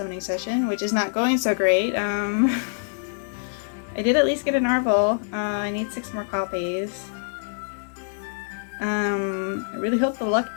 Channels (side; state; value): right; silent; digital silence